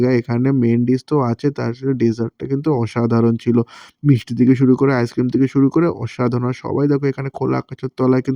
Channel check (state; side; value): identical; both; correlation 1.00